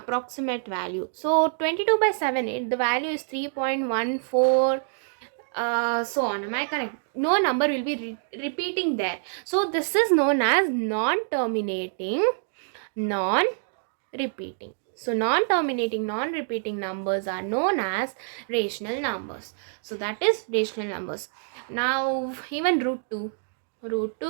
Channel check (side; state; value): left; silent; digital silence